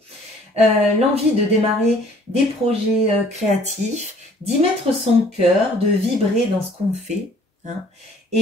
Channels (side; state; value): both; normal; correlation 0.56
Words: l'envie de démarrer des projets créatifs, d'y mettre son cœur, de vibrer dans ce qu'on fait. Hein.